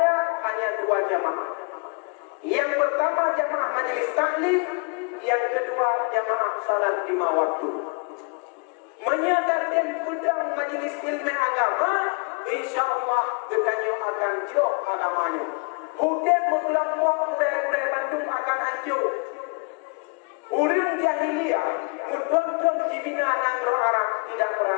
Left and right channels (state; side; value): quieter; right; 36.9 dB